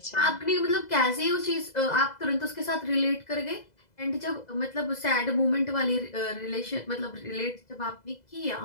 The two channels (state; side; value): late; right; 2.0 ms